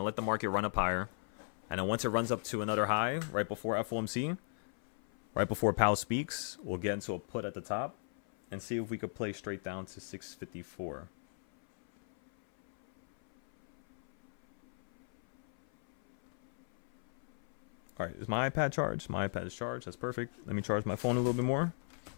let the market run up higher. And then once it runs up to another high, right before FOMC, right before Powell speaks, we'll get into a put at the top and see if we could play straight down to 654. All right, is my iPad charged? My iPad is charged. That's perfect. Let me charge my phone a little bit more.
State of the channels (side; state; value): right; silent; 54 dB below the other